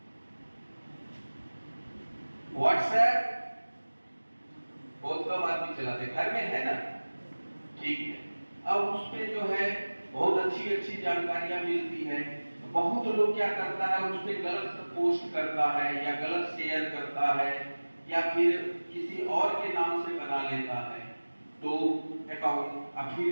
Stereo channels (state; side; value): inverted; both; correlation -1.00